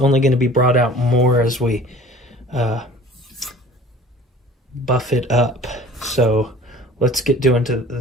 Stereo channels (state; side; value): normal; both; correlation 0.46